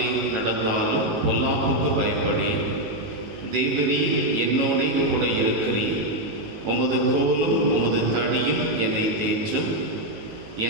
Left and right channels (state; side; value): late; left; 19 ms